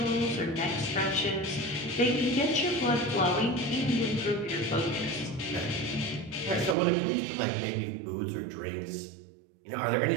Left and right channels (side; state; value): left; drops out; at 6.8 s